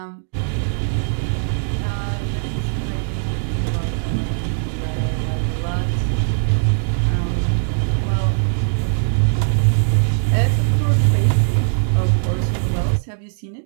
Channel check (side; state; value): left; silent; digital silence